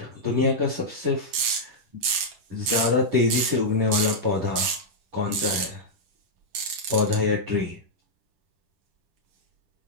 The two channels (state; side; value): late; left; 10 ms